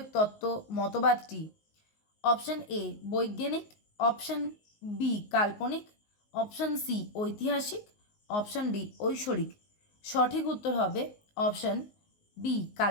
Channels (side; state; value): right; late; 19 ms